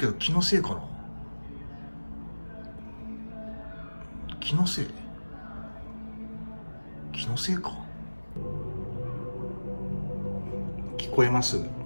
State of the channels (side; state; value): both; inverted; correlation -1.00